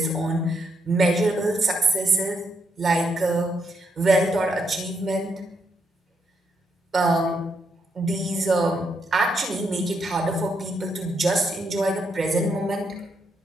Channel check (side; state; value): both; normal; correlation 0.78